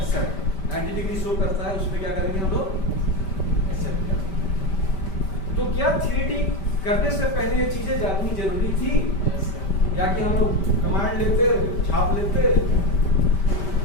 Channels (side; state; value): right; late; 5.1 ms